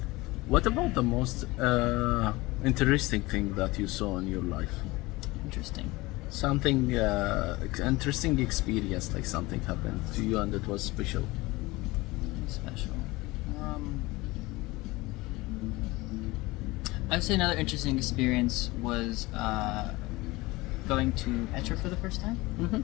What about the most interesting thing that you saw in your life? Interesting. Something interesting experience, like something happened to you and it was special. Special. I would say another interesting experience was going to Petra for the first time. Mm-hmm.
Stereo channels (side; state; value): right; quieter; 21.4 dB